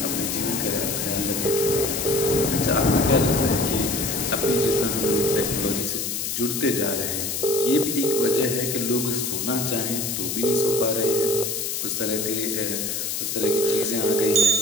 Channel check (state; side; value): noise; left; hiss, 2 dB below the sound